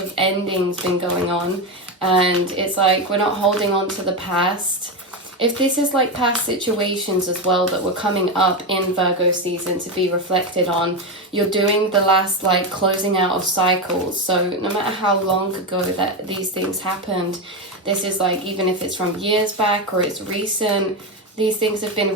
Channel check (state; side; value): normal; both; correlation 0.13